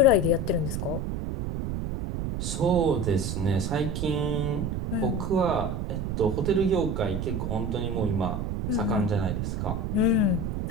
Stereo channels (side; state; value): right; noise; rumble, 2 dB below the sound